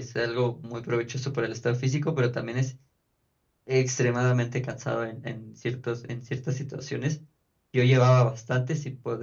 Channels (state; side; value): identical; both; correlation 1.00